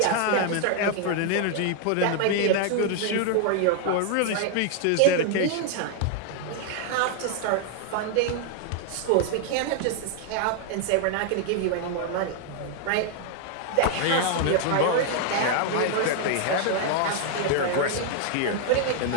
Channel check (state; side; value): different; both; correlation 0.00